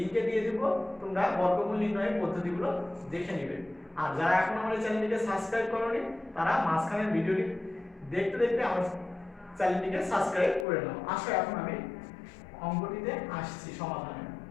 দিয়ে দেব। তোমরা বর্গমূল নির্ণয়ের পদ্ধতিগুলো দেখে নেবে। আর যারা এখন আমাদের চ্যানেলটিকে সাবস্ক্রাইব করোনি তারা মাঝখানের ভিডিওটি দেখতে দেখতে আমার চ্যানেলটিকে সাবস্ক্রাইব করে নাও। আসো এখন আমি অঙ্কটিতে আসছি সমাধানে।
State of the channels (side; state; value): right; drops out; at 10.7 s